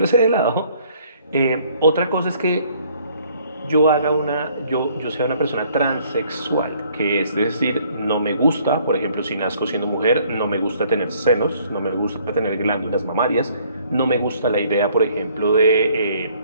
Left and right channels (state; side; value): inverted; both; correlation -0.61